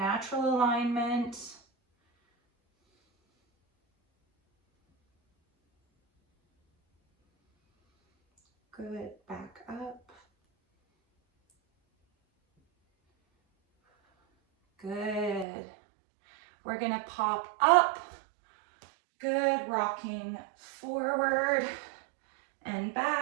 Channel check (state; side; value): drops out; left; at 15.5 s